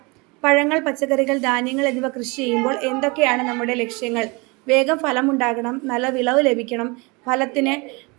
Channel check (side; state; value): left; quieter; 27.6 dB